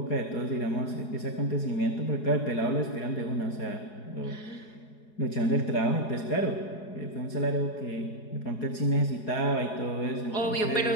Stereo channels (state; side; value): late; right; 4.8 ms